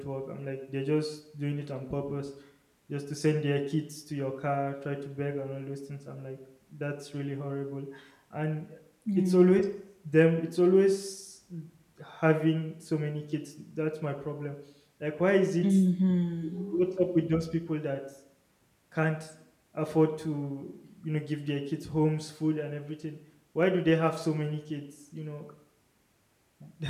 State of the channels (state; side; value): identical; both; correlation 1.00